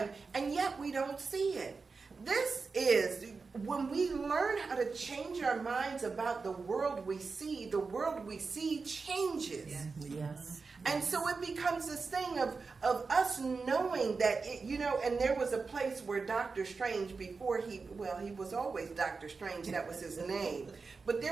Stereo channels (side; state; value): left; quieter; 4.5 dB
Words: and yet we don't see it. This is when we learn how to change our minds about the world we see changes. Yes. And so it becomes this thing of us knowing that, and there was a place where Dr. Strange, before he was always Dr. Strange, that was his name. But